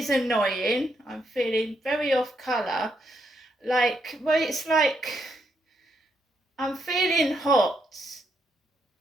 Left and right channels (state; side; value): normal; both; correlation 0.78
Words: annoying. I'm feeling very off colour. It's like I'm feeling hot.